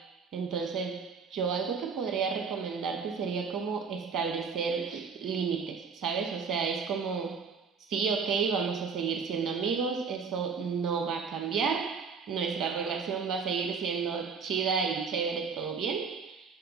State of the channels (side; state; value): left; quieter; 5.6 dB